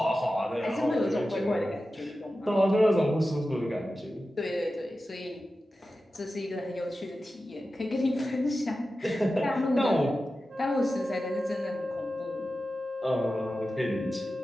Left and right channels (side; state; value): both; normal; correlation 0.93